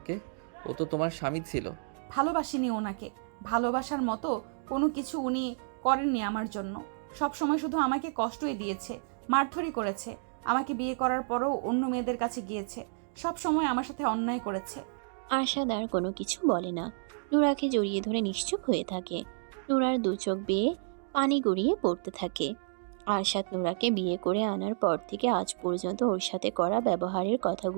ও তো তোমার স্বামী ছিল। ভালোবাসিনি ওনাকে। ভালোবাসার মতো কোনো কিছু উনি করেননি আমার জন্য। সব সময় শুধু আমাকে কষ্টই দিয়েছে, মারধরি করেছে। আমাকে বিয়ে করার পরও অন্য মেয়েদের কাছে গিয়েছে। সব সময় আমার সাথে অন্যায় করেছে। আরশাদ আর কোনো কিছু বলে না। নূরাকে জড়িয়ে ধরে নিশ্চুপ হয়ে থাকে। নূরার দু চোখ বেয়ে পানি গড়িয়ে পড়তে থাকে। আরশাদ নূরাকে বিয়ে করে আনার পর থেকে আজ পর্যন্ত ওর সাথে করা ব্যবহারের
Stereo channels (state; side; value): silent; left; digital silence